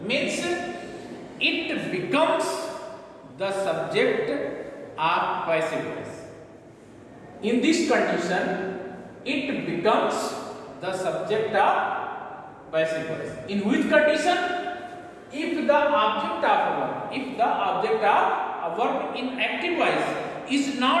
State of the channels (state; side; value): identical; both; correlation 1.00